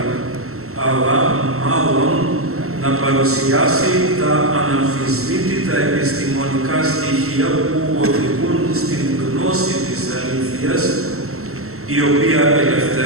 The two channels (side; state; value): left; late; 0.63 ms